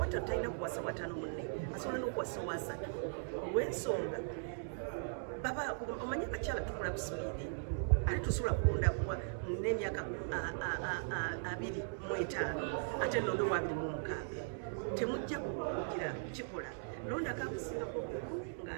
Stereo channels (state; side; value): silent; left; digital silence